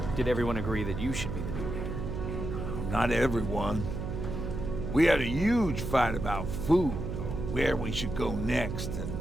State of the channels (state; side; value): noise; right; hum, 4 dB below the sound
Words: Did everyone agree that you should be the new leader? Not everyone. We had a huge fight about food, or where we should go next, and